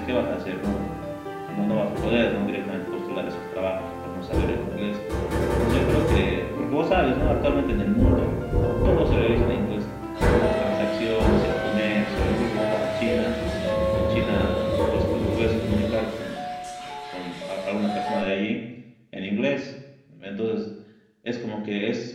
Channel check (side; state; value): both; identical; correlation 1.00